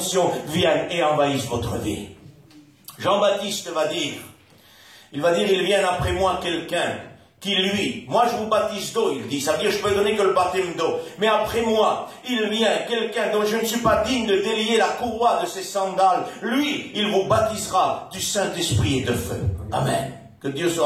vienne et envahisse votre vie. Jean-Baptiste va dire, il vient après moi quelqu'un qui lui, moi je vous baptise d'eau, il dit, ça veut dire je peux donner que le baptême d'eau, mais après moi, il vient quelqu'un dont je ne suis pas digne de délier la courroie de ses sandales, lui, il vous baptisera du Saint-Esprit et de feu. Amen. Que Dieu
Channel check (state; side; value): identical; both; correlation 1.00